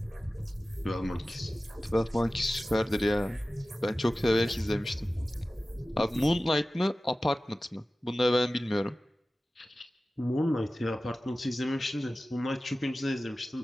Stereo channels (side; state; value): both; normal; correlation 0.96